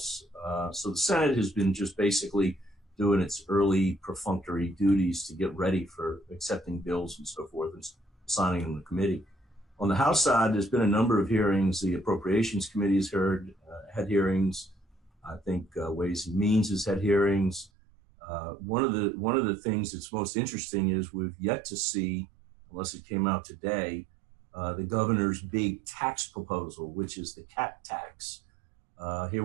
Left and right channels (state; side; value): drops out; left; at 17.7 s